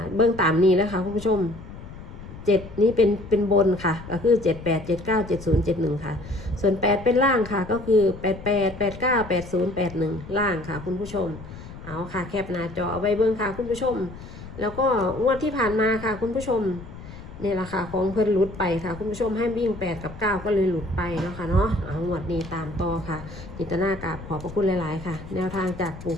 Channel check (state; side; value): noise; left; rumble, 14 dB below the sound